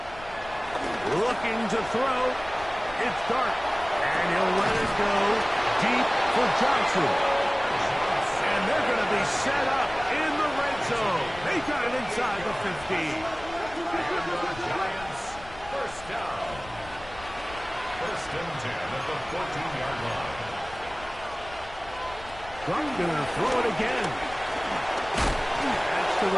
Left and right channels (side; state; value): left; noise; rumble, 18 dB below the sound